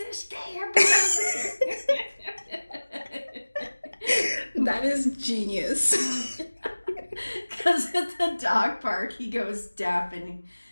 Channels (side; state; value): both; inverted; correlation -1.00